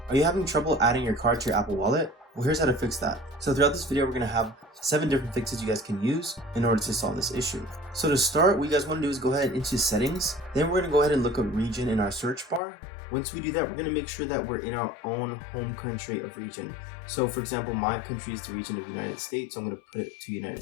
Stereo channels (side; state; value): right; drops out; at 12.6 s